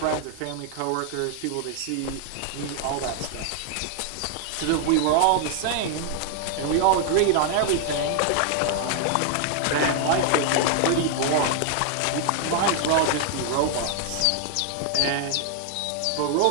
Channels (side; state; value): both; different; correlation 0.00